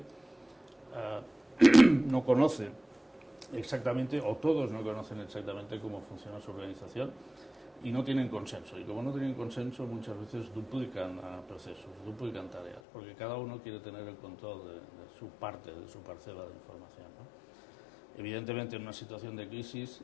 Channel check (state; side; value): drops out; right; at 12.8 s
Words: no conoce exactamente, o todos no conocen exactamente cómo funciona su organización y no tienen consenso. Y como no tienen consenso, muchas veces duplican procesos, duplican tareas, porque cada uno quiere tener el control de su parte, de su parcela de información, ¿no? Evidentemente, en una situación de crisis,